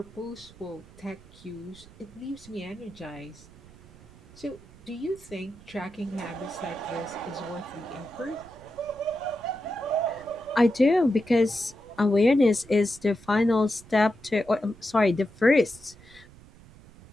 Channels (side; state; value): right; noise; rumble, 22 dB below the sound